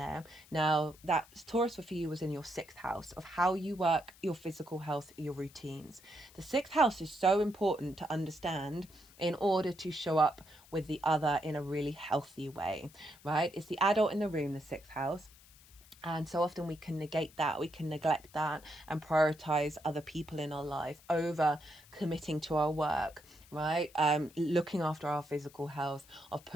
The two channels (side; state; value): left; noise; hiss, 24 dB below the sound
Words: Now, that Taurus for you was in your 6th house of how you work, your physical health, your routines. The 6th house is so important to understand in order to show up with the other in a really healthy way, right? It's the adult in the room, the 6th house. And so often we can negate that, we can neglect that and prioritize other people in our life over committing to our work, right? Looking after our physical health, of